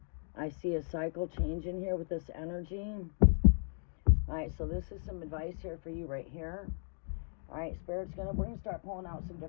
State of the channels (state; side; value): silent; right; 54 dB below the other